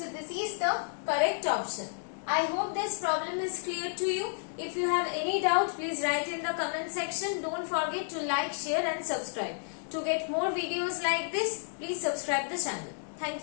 this is the correct option. I hope this problem is clear to you. If you have any doubt, please write in the comment section. Don't forget to like, share and subscribe. To get more videos like this, please subscribe the channel. Thank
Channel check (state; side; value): silent; right; digital silence